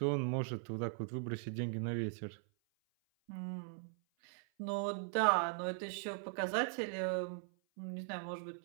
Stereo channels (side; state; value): left; silent; 51 dB below the other